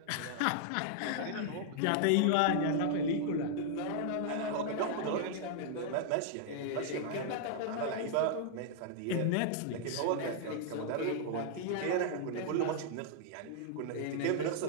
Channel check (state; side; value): different; both; correlation -0.01